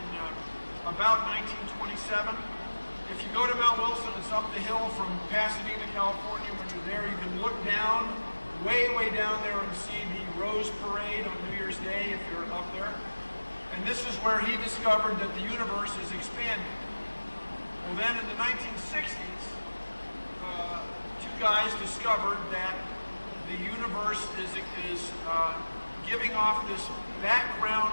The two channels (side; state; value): both; inverted; correlation -1.00